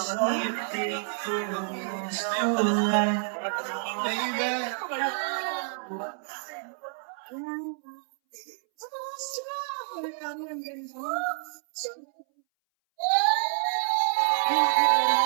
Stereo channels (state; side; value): silent; left; 59 dB below the other